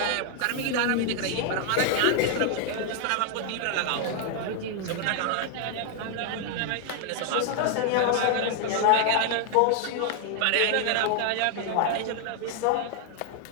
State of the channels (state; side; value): different; both; correlation 0.00